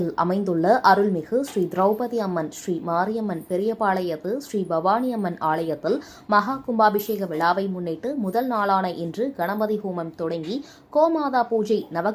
அமைந்துள்ள அருள்மிகு ஸ்ரீ திரௌபதி அம்மன் ஸ்ரீ மாரியம்மன் பெரியபாளையத்து ஸ்ரீ பவானி அம்மன் ஆலயத்தில் மகா கும்பாபிஷேக விழாவை முன்னிட்டு முதல் நாளான இன்று கணபதி ஹோமம் தொடங்கி கோமாதா பூஜை,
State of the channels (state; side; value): identical; both; correlation 1.00